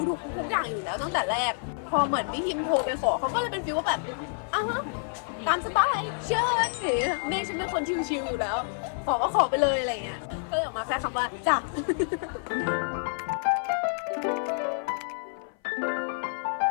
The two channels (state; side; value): silent; right; 56 dB below the other